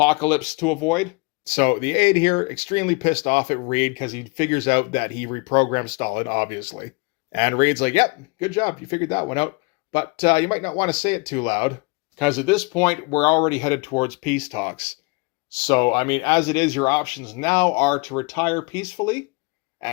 to avoid. So the aide here, extremely pissed off at Reed because he figures out that he reprogrammed Stalin, obviously. And Reed's like, yep, good job, you figured that one out. But you might not want to say it too loud, because at this point, we're already headed towards peace talks. So, I mean, as it is, your options now are to retire peacefully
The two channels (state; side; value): quieter; right; 29.5 dB